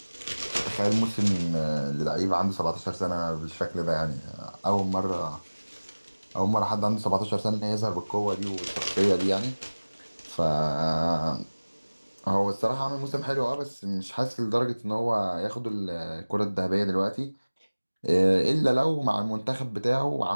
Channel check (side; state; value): both; inverted; correlation -1.00